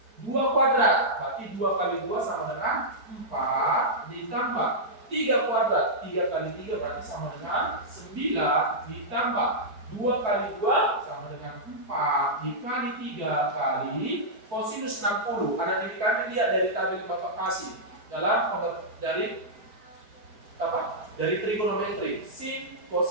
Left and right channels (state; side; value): late; left; 4.5 ms